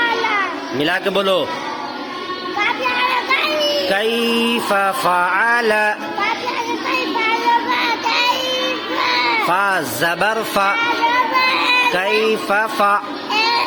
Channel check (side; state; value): both; identical; correlation 1.00